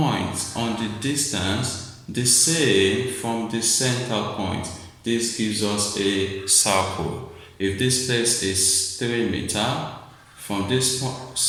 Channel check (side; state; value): both; identical; correlation 1.00